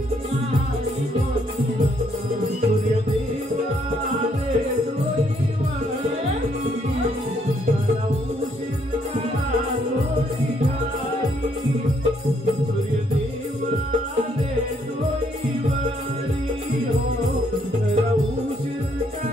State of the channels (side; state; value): both; normal; correlation 0.70